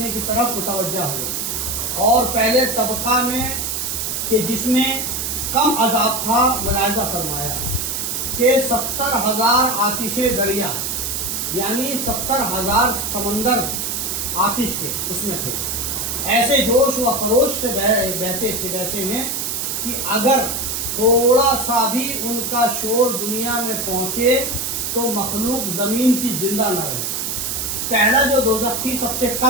کی طرف متوجہ ہوئے اور پہلے طبقہ میں کہ جس میں کم عذاب تھا ملاحظہ فرمایا کہ 70,000 آتش دریا یعنی 70,000 سمندر آتش کے اس میں تھے. ایسے جوش و خروش سے بہتے ہیں کہ اگر تھوڑا سا بھی ان کا شور دنیا میں پہنچے تو مخلوق زمین کی زندہ نہ رہے. پہلا جو دوزخ تھی سب سے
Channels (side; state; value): right; noise; hiss, 2 dB below the sound